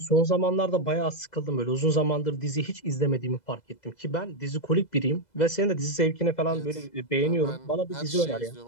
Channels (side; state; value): right; late; 2.0 ms